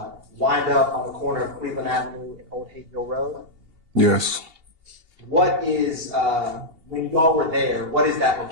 wind up on the corner of Cleveland Avenue and Old Hayville Road? Yes. What is, when y'all were there, what is that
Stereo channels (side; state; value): left; late; 2.8 ms